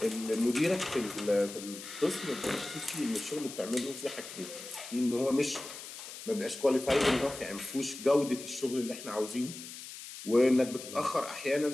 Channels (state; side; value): noise; left; hiss, 12 dB below the sound